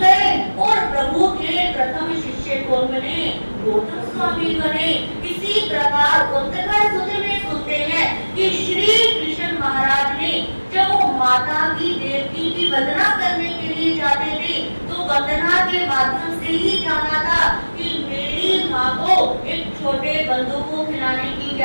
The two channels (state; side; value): inverted; both; correlation -1.00